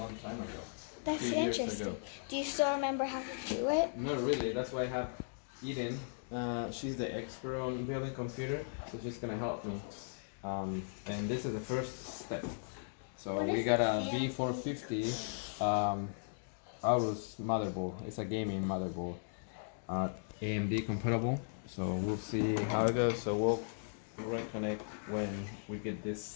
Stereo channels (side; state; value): right; silent; digital silence